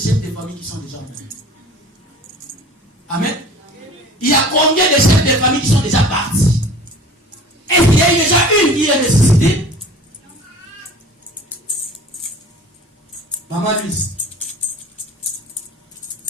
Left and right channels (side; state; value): both; normal; correlation 0.44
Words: de famille qui sont déjà morts? Amen. Il y a combien de chefs de famille qui sont déjà partis? Est-ce qu'il y a déjà une qui est ressuscitée? Maman Luce.